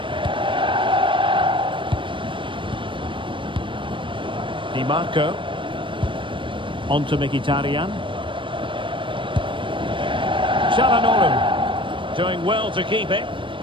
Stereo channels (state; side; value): late; left; 0.24 ms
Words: Di Marco. On to Mkhitaryan. Çalhanoğlu. Doing well to keep it.